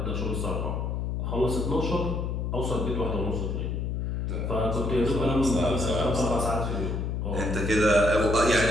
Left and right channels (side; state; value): left; noise; hum, 1 dB below the sound